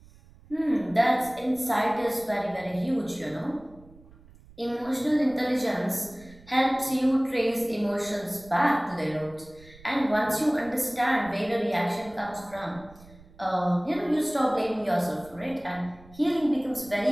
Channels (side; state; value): right; noise; rumble, 23 dB below the sound